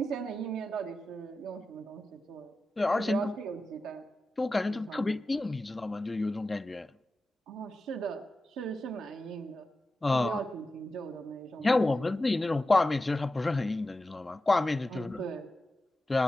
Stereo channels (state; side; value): normal; both; correlation 0.93